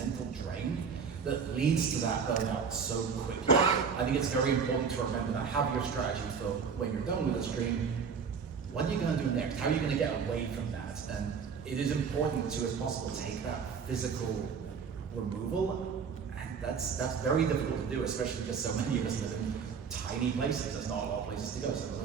drain that leads to that burnout so quickly. I think it's very important to remember that. Have your strategy for when you're done with the stream. What are you going to do next? How are you going to get away from that? And it is important to, as possible, take that physical removal. And that's very difficult to do, especially because so many of us live in tiny places. There's not a lot of places to go, so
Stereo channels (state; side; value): quieter; left; 6.2 dB